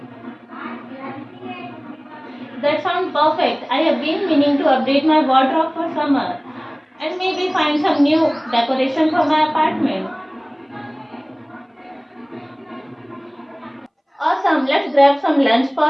That sounds perfect. I have been meaning to update my wardrobe for summer and maybe find some new decoration for my apartment. Awesome, let's grab some lunch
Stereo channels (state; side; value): identical; both; correlation 1.00